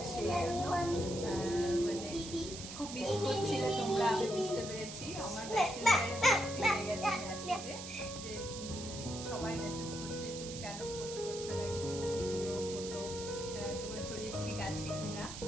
সেই জন্য মানে খুব মিস করছিলে তোমরা, আমি বুঝতে পেরেছি। আমার মেসেঞ্জারে ভর্তি হয়ে গেছে মেসেজে যে সবাই মেসেজ করছে তুমি কেন পোস্ট করছো না কিছু ভিডিও ফটো, তোমার শরীর ঠিক আছে কিনা।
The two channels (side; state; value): right; noise; hiss, 9 dB below the sound